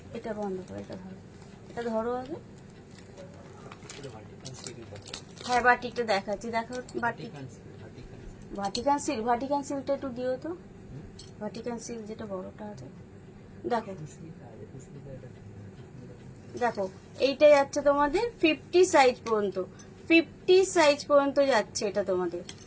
এটা বন্ধ করে, এটা ধরো, এটা ধরো আগে। হ্যাঁ বাটিকটা দেখাচ্ছি, দেখো বাটিক, ভাটিকান সিল্ক, ভাটিকান সিল্কটা একটু দিও তো, ভাটিকান সিল্ক যেটা বড়টা আছে। দেখো দেখো, এইটা যাচ্ছে তোমাদের 50 সাইজ পর্যন্ত, 50 সাইজ পর্যন্ত যাচ্ছে এটা তোমাদের।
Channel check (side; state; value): both; identical; correlation 1.00